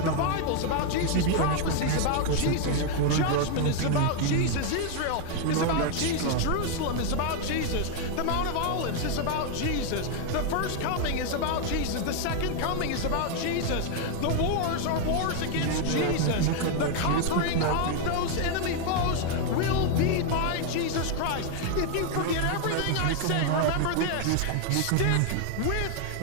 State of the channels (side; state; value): both; different; correlation 0.00